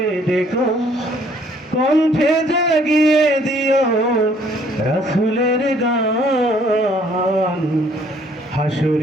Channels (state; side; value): normal; both; correlation 0.62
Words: ডেকো, কণ্ঠে জাগিয়ে দিও রাসূলের গান,